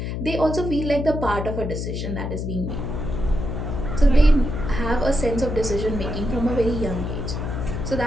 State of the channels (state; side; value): noise; left; hum, 4 dB below the sound